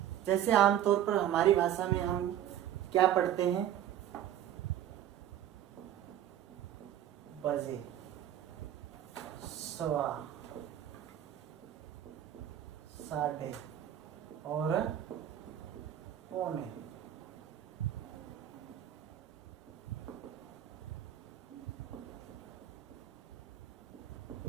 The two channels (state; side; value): quieter; left; 11.2 dB